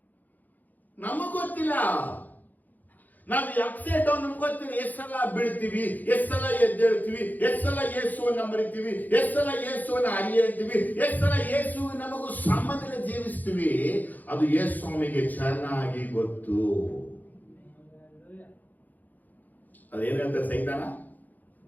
ನಮಗ್ ಗೊತ್ತಿಲ್ಲ, ನಾವು ಅಪ್ಸೆಟ್ ಡೌನ್ ನಮ್ಗೆ ಗೊತ್ತಿಲ್ಲ. ಎಷ್ಟು ಸಲ ಬೀಳ್ತೀವಿ, ಎಷ್ಟು ಸಲ ಎದ್ದೇಳ್ತೀವಿ, ಎಷ್ಟು ಸಲ ಯೇಸುವನ್ನ ಮರಿತೀವಿ, ಎಷ್ಟು ಸಲ ಯೇಸುವನ್ನ ಅರಿಯಂತೀವಿ, ಎಷ್ಟು ಸಲ ಯೇಸು ನಮಗೂ ಸಂಬಂಧದಲ್ಲಿ ಜೀವಿಸ್ತೀವಿ. ಅದು ಯೇಸು ಸ್ವಾಮಿಗೆ ಚೆನ್ನಾಗಿ ಗೊತ್ತು. ಅದೇನ್ ಹೇಳ್ತಾರೆ ಸೈತಾನ?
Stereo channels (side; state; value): right; late; 0.083 ms